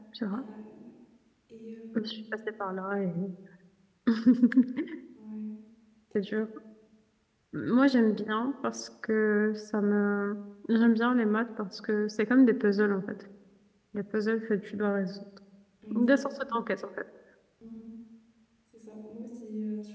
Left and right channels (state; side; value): identical; both; correlation 1.00